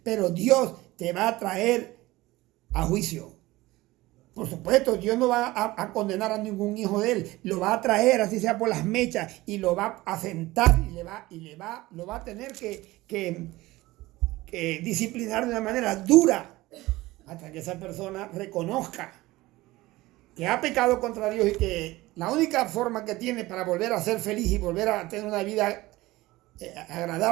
Pero Dios te va a traer a juicio. Por supuesto, Dios no va a condenar a ningún hijo de él, lo va a traer, así sea por las mechas, y lo va a sentar y lo va a tener que disciplinar de una manera dura hasta que esa persona reconozca que ha pecado contra Dios y que la única forma que tiene para volver a ser feliz y volver a tener una vida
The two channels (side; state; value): left; quieter; 19.0 dB